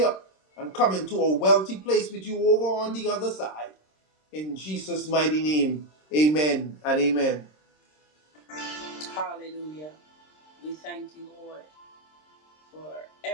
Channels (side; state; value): right; late; 26 ms